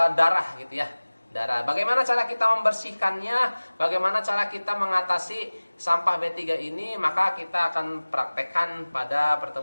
darah gitu ya. Darah. Bagaimana cara kita membersihkannya? Bagaimana cara kita mengatasi sampah B3 ini? Maka kita akan praktekkan pada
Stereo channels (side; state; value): both; inverted; correlation -1.00